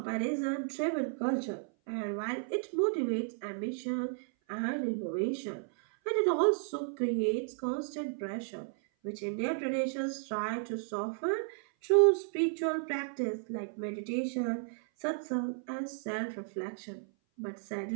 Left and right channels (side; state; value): left; silent; 55 dB below the other